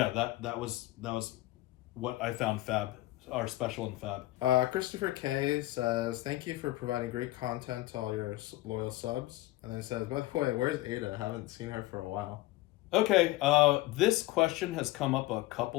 that was what I found our special in Fab. Christopher K says, thank you for providing great content to all your loyal subs. And then he says, by the way, where's Ada? I haven't seen her for a while. Okay, this question has come up a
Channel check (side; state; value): right; quieter; 17.6 dB